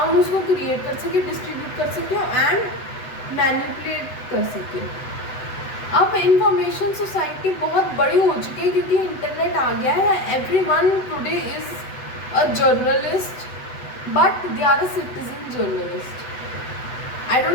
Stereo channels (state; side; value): late; right; 8.0 ms